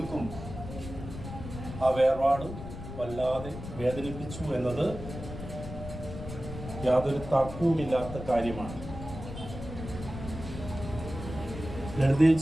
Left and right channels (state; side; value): noise; left; rumble, 10 dB below the sound